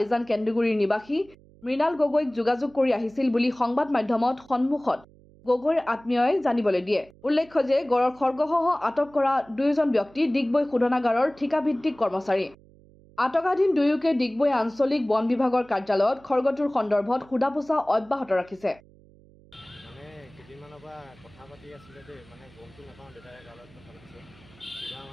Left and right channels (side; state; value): right; noise; hum, 26 dB below the sound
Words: কেন্দ্ৰগুৰিৰ নিবাসী মৃণাল গগৈক যোগাযোগ কৰি আহিছিল বুলি সংবাদ মাধ্যমত সন্মুখত গগৈৰ আত্মীয়ই জানিবলৈ দিয়ে। উল্লেখ্য যে গড়ৰ খৰ্গসহ আটক কৰা দুয়োজন ব্যক্তি ডিগবৈ শোধনাগাৰৰ ঠিকাভিত্তিক কৰ্মচাৰী। আটকাধীন দুয়োকে ডিগবৈ আঞ্চলিক বন বিভাগৰ কাৰ্যালয়ত খৰ্গটোৰ সন্দৰ্ভত সোধা পোছা অব্যাহত ৰাখিছে। মানে কেইদিনমানৰ পৰা কথা পাতি আছিলে দেই, মানে গমটো নাপাওঁ, দেউতাই গালত কথা পাতিছে কিবা